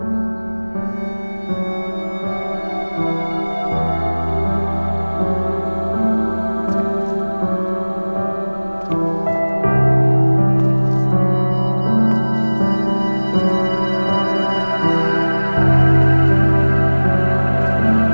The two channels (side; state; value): both; inverted; correlation -1.00